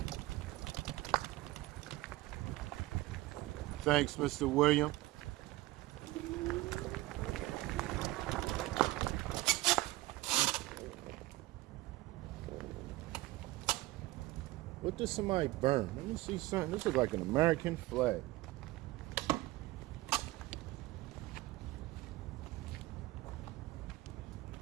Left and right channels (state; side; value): quieter; left; 18.6 dB